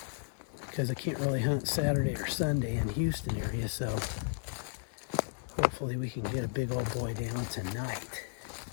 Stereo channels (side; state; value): right; silent; digital silence